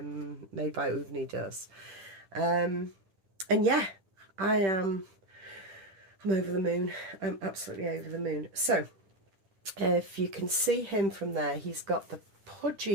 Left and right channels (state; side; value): late; left; 10 ms